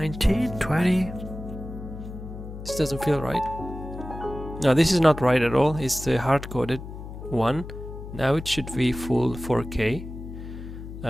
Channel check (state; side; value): noise; left; hum, 11 dB below the sound